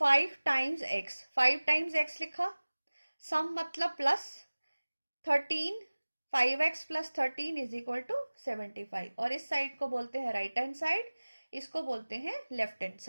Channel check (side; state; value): both; inverted; correlation -1.00